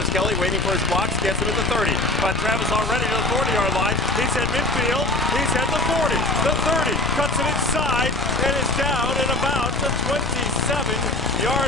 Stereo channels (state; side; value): noise; left; rumble, 6 dB below the sound